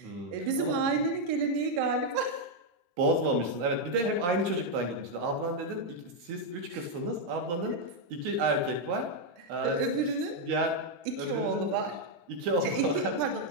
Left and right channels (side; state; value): left; late; 17 ms